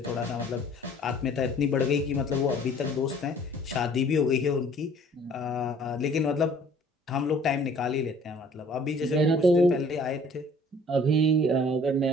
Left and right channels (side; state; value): both; normal; correlation 0.54